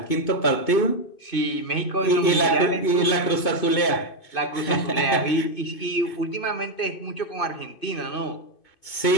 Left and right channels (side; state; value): right; late; 2.5 ms